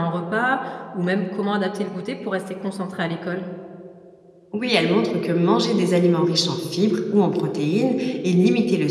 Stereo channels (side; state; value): both; identical; correlation 1.00